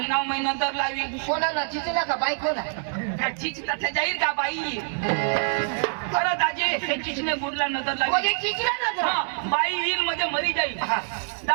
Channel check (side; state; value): left; silent; digital silence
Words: नंतर लावी कोणाला चिचल्या का बायकोला काय चिच तठे जाईल का बाई अरे दाजी हे चिचने बुडला नंतर लावी म्हणजे चिचल्या ना बाई येईल मध्ये मरी जाईल